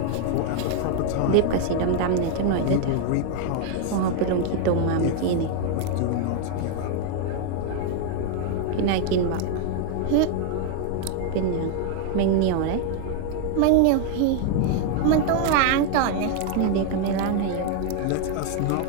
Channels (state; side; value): different; both; correlation 0.00